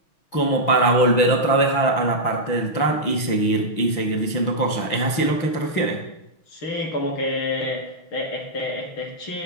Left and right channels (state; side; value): late; right; 6.2 ms